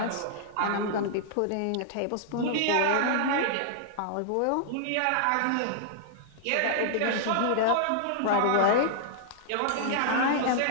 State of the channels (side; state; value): both; different; correlation -0.01